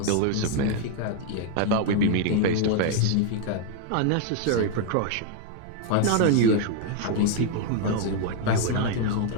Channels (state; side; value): different; both; correlation 0.01